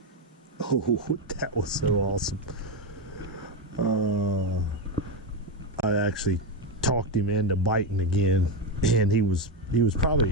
Oh, that was so awesome. I actually talked him into biting again, and he was probably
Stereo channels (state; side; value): normal; both; correlation 0.10